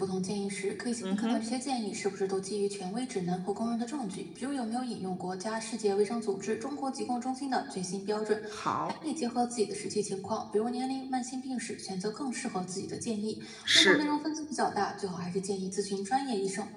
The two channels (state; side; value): identical; both; correlation 1.00